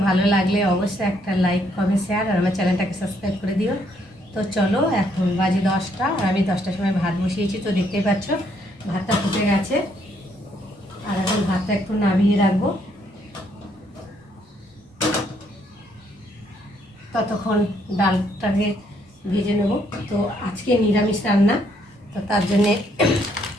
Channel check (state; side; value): normal; both; correlation 0.70